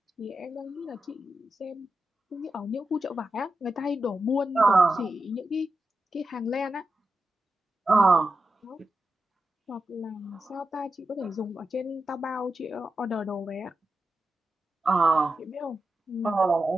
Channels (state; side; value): normal; both; correlation 0.89